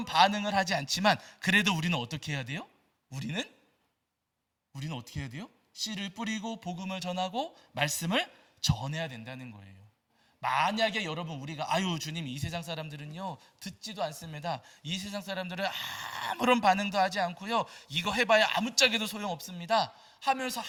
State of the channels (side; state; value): both; identical; correlation 1.00